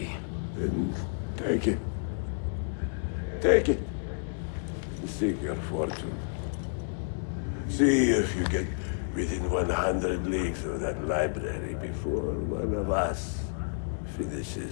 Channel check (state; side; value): silent; right; digital silence